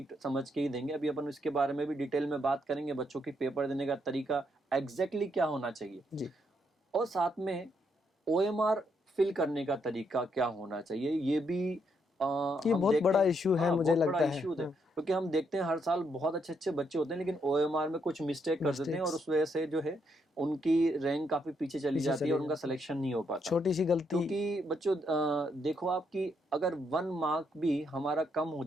समझ के ही देंगे। अभी अपन इसके बारे में भी डिटेल में बात करेंगे, बच्चों की पेपर देने का तरीका एग्जैक्टली क्या होना चाहिए जी। और साथ में OMR फिल करने का तरीका क्या होना चाहिए, ये भी ये बहुत बड़ा इशू है। मुझे लगता है क्योंकि हम देखते हैं हर साल बहुत अच्छे अच्छे बच्चे होते हैं लेकिन OMR में कुछ मिस्टेक कर देते हैं और उस वजह से जो है उनकी रैंक काफी पीछे चली जाती है और उनका सिलेक्शन नहीं हो पाता, छोटी सी गलती। क्योंकि बच्चों देखो आप कि अगर 1 मार्क भी हमारा कम हो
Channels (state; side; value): normal; both; correlation 0.76